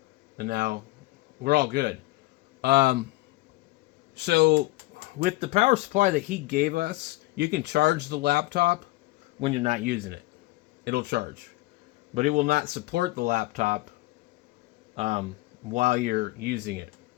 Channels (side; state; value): right; quieter; 20.7 dB